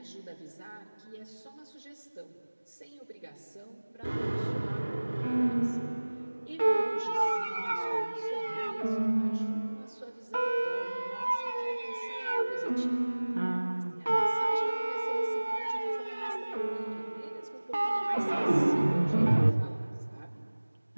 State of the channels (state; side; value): inverted; both; correlation -1.00